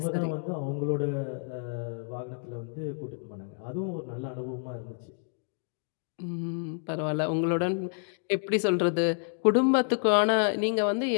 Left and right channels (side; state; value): right; silent; 58 dB below the other